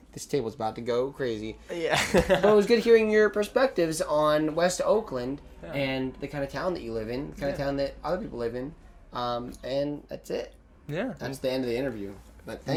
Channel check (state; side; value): identical; both; correlation 1.00